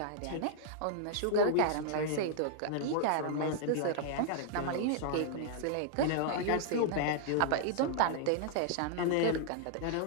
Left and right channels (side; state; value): both; different; correlation -0.01